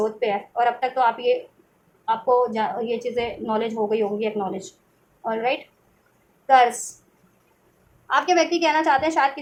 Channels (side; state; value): both; identical; correlation 1.00